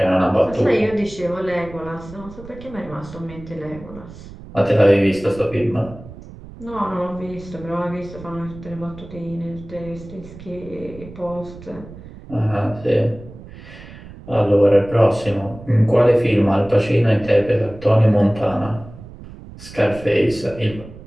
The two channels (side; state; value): right; noise; rumble, 17 dB below the sound